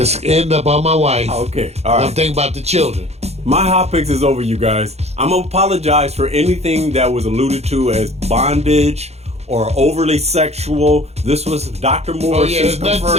end up on my wife. Okay, all I'm right. thinking about the children. My hot picks is over, you guys. I'm going to apologize for anything that was alluded to as bondage or overly sexual. This was Dr. Oh Morris yeah, there's nothing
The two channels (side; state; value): left; late; 0.31 ms